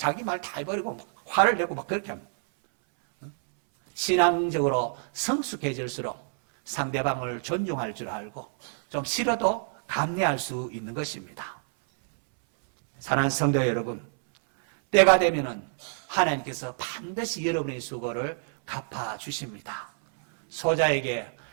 말 다 해버리고 막 화를 내고 막 그렇게 합니다. 신앙적으로 성숙해질수록 상대방을 존중할 줄 알고 좀 싫어도 감내할 수 있는 것입니다. 사랑하는 성도 여러분, 때가 되면은 하나님께서 반드시 여러분의 수고를 갚아주십니다. 소자에게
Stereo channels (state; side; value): silent; left; 60 dB below the other